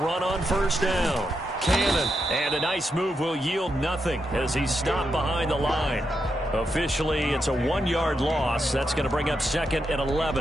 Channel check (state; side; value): normal; both; correlation 0.84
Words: on first down. Cannon, and a nice move will yield nothing as he's stopped behind the line. Officially, it's a 1-yard loss. That's going to bring up 2nd and